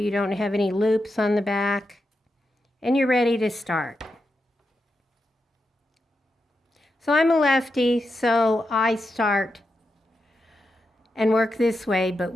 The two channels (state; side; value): normal; both; correlation 0.87